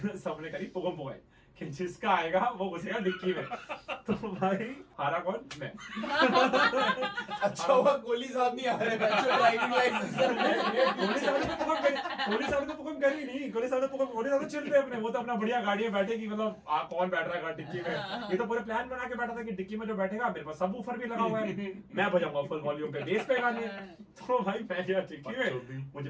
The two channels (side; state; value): both; identical; correlation 1.00